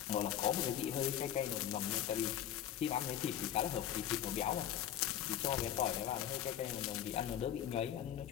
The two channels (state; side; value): quieter; right; 10.7 dB